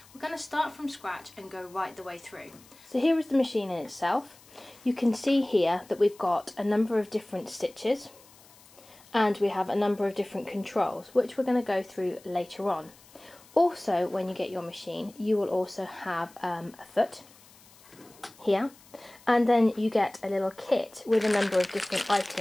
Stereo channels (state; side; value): noise; left; hiss, 25 dB below the sound